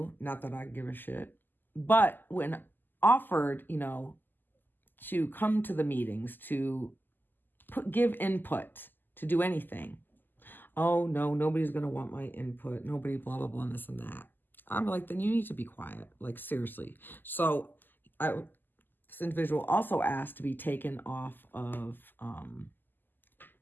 Not that I give a shit. But when offered, to come to the meetings, to give input, to do anything, oh no, nobody's going to want my input. Nobody, blah, blah, blah, and this and that. I'm like, then you need to be quiet. Like, seriously. So this individual also asked to be taken off of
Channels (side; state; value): right; late; 0.090 ms